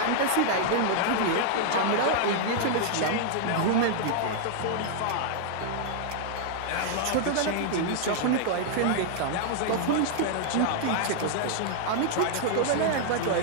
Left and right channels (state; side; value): different; both; correlation -0.01